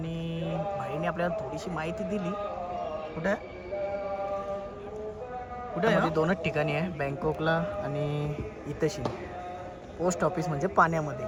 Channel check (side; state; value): both; identical; correlation 1.00